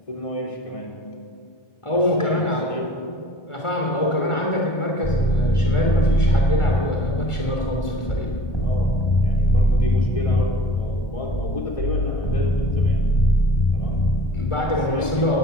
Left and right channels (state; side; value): late; right; 1.4 ms